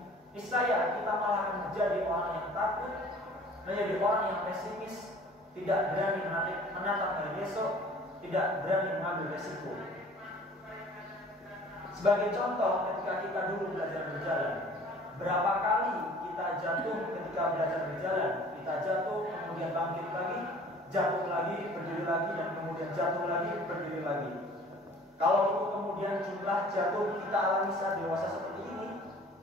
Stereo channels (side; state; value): both; normal; correlation 0.49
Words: niscaya kita malah akan menjadi orang yang takut, menjadi orang yang pesimis, tidak berani menatap hari besok, tidak berani mengambil resiko. Sebagai contoh, ketika kita dulu belajar berjalan, berapa kali kita jatuh ketika belajar berjalan? Kita jatuh, kemudian bangkit lagi, jatuh lagi, berdiri lagi, dan kemudian jatuh lagi, berdiri lagi. Kalau itu kemudian jumlah jatuh kita alami saat dewasa seperti ini